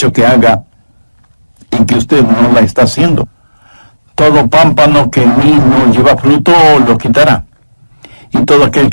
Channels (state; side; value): inverted; both; correlation -1.00